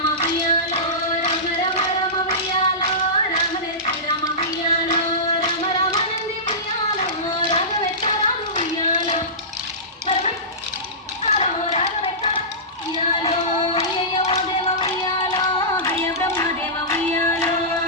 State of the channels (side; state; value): both; normal; correlation -0.19